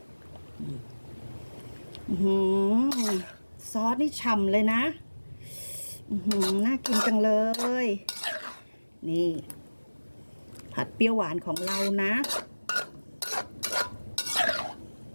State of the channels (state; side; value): inverted; both; correlation -1.00